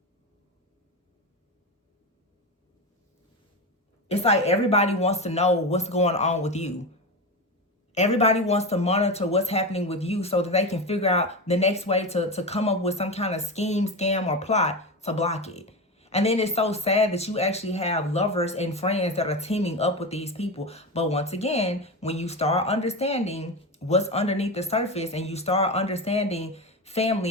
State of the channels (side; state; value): both; normal; correlation 0.20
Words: It's like everybody wants to know what's going on with you. Everybody wants to monitor what's happening with you so that they can figure out the next way to come up with some kind of scheme, scam, or plot to block it. And then it's so sad that you actually have lovers and friends that are teaming up with these people. But once again, when you start understanding what's underneath the surface and you start understanding